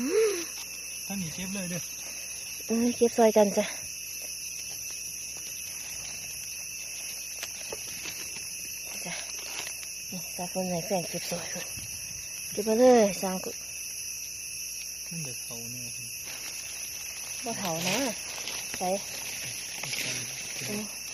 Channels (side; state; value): left; noise; hum, 23 dB below the sound